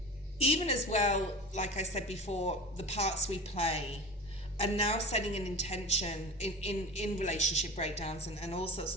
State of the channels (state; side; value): normal; both; correlation 0.32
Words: even as well, like I said before, the parts we play, and now setting an intention in relationship breakdowns and all sorts